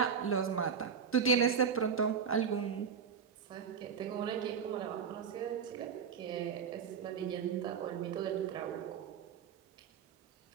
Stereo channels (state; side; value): quieter; left; 6.6 dB